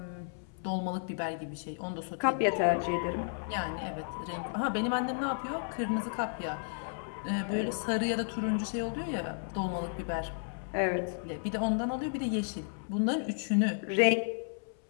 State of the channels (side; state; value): right; silent; 56 dB below the other